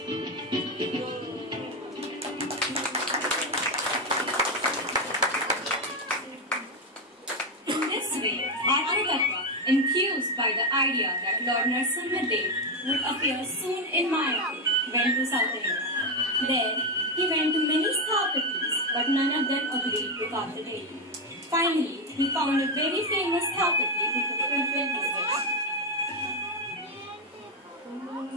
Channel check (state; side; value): normal; both; correlation 0.08